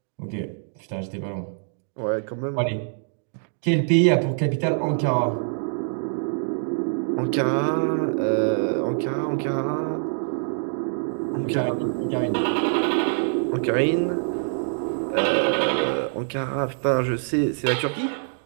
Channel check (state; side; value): silent; left; digital silence